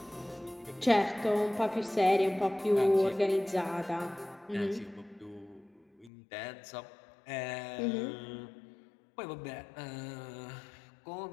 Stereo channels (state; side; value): drops out; right; at 6.1 s